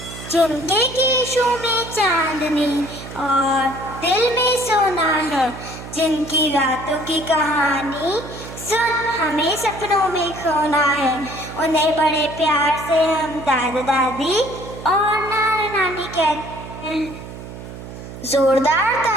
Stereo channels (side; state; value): right; noise; hum, 12 dB below the sound